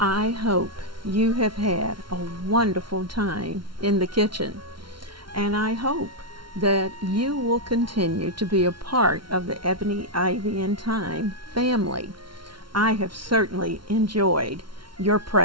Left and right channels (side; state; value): left; late; 0.73 ms